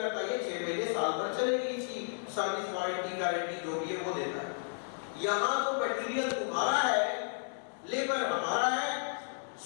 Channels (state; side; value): silent; right; digital silence